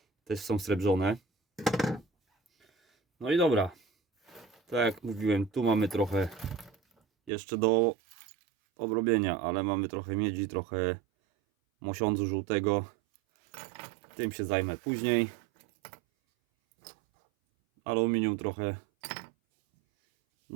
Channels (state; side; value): drops out; left; at 7.3 s